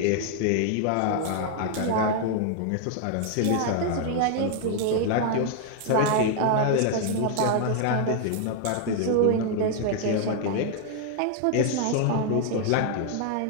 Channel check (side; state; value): both; different; correlation 0.00